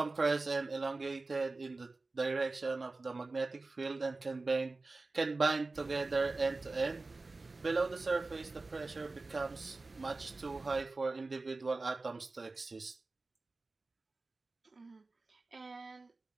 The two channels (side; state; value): left; quieter; 3.5 dB